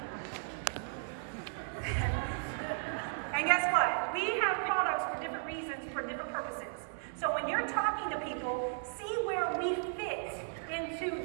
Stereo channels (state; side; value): silent; left; 54 dB below the other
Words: And guess what? We have products for different reasons, for different purposes. So when you're talking to people, see where we fit